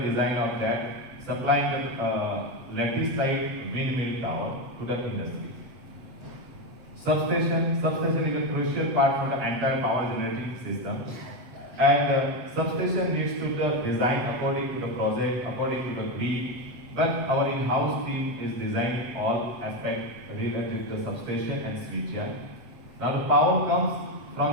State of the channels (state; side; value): late; left; 8.0 ms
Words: of that, supplying the lattice type windmill tower to the industry. Substation is a crucial part for the entire power generating system, and substation needs to be designed according to the project, according to the grid. But our in-house team is designing all aspects related to the substation and switchyard. Now the power comes from